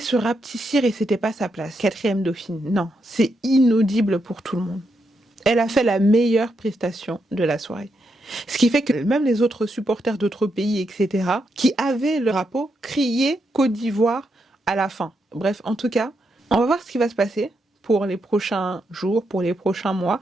rapetissir et c'était pas sa place. 4e dauphine. Non, c'est inaudible pour tout le monde. Elle a fait la meilleure prestation de la soirée. Ce qui fait que même les autres supporters d'autres pays, etc., qui avaient le drapeau, criaient Côte d'Ivoire à la fin. Bref, en tout cas, on va voir ce qui va se passer pour les prochains jours, pour les prochains mois.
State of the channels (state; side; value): normal; both; correlation 0.82